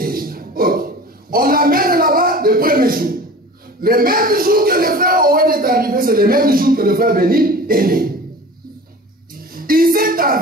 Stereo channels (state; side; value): normal; both; correlation 0.39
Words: Ok. On l'amène là-bas le premier jour. Le même jour que le frère Owen est arrivé, c'est le même jour que le frère Béni est né. Il s'est